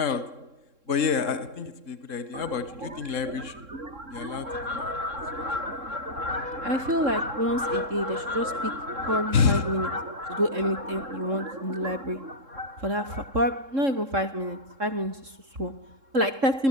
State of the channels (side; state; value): left; late; 3.7 ms